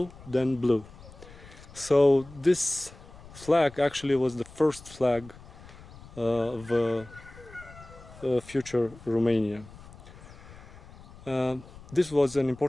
then blue. So this flag actually was the first flag of future Romania. This was an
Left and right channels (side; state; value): left; noise; rumble, 19 dB below the sound